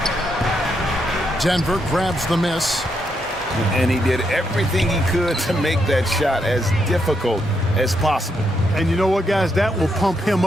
Denver grabs the miss. And he did everything he could to make that shot as difficult as possible. And you know what, guys? That will pump him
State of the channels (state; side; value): normal; both; correlation 0.79